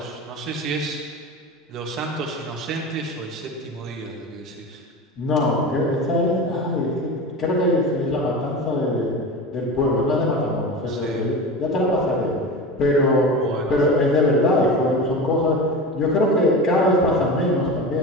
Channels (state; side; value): normal; both; correlation 0.28